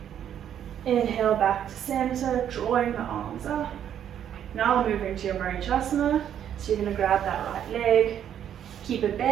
Inhale back to center, drawing the arms up. Now moving to your Marichasana. So you're going to grab that right leg, keep it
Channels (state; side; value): quieter; left; 9.7 dB